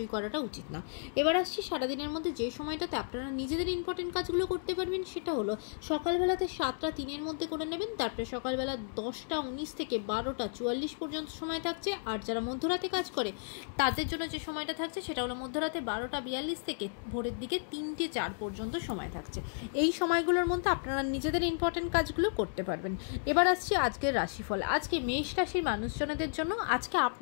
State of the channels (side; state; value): right; silent; digital silence